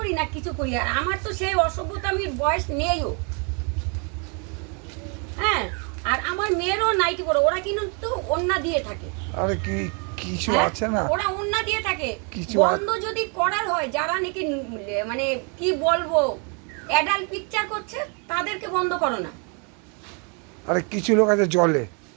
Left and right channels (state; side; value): quieter; left; 36.2 dB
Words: না কিছু করি? আর আমার তো সেই অসভ্যতামির বয়স নেইও। হ্যাঁ, আর আমার মেয়েরও নাইটি পরে, ওরা কিন্তু ওন্না দিয়ে থাকে। আরে কি কিছু আছে না, ওরা ওন্না দিয়ে থাকে। কিছু বন্ধ যদি করার হয়, যারা নাকি মানে কি বলবো অ্যাডাল্ট পিকচার করছে, তাদেরকে বন্ধ করো না। আরে কিছু লোক আছে জলে,